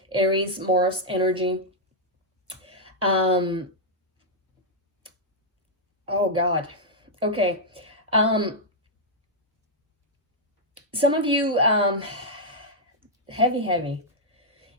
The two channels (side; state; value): both; normal; correlation -0.05